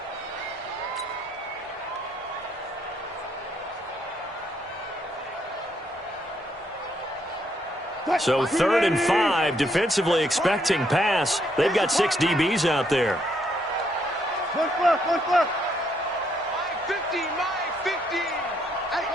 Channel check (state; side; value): normal; both; correlation 0.73